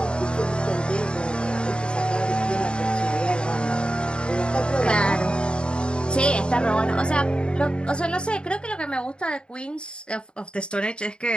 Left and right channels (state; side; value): late; right; 0.052 ms